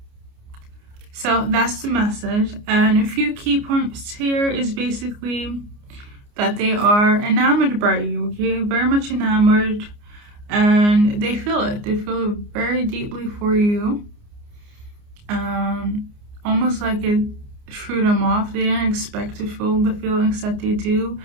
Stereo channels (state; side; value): late; left; 29 ms